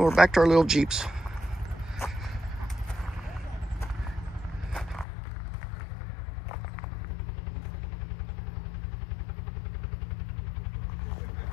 back to our little Jeeps.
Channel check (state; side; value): drops out; right; at 5.1 s